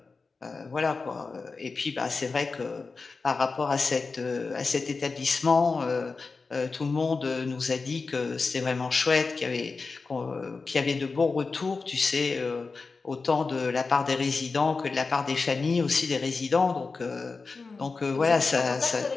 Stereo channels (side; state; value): right; quieter; 4.3 dB